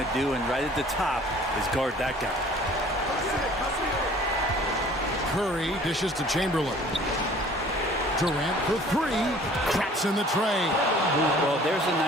do, and right at the top is guard that guy. Curry dishes to Chamberlain. Durant for 3. Traps in the tray. Well, there's a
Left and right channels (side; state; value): both; normal; correlation 0.51